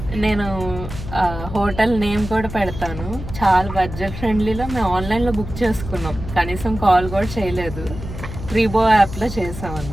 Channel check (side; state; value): left; noise; hum, 10 dB below the sound